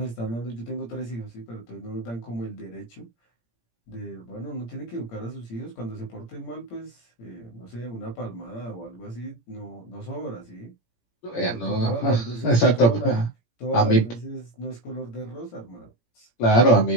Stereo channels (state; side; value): late; right; 17 ms